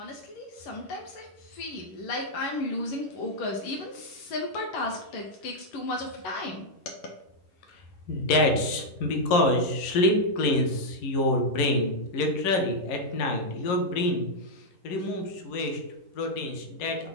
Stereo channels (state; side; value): late; right; 11 ms